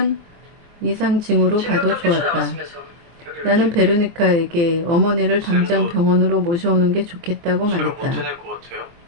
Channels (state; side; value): late; left; 23 ms